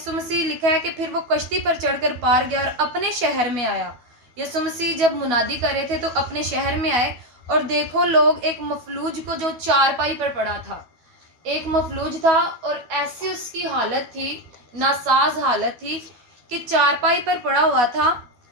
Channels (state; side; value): late; left; 12 ms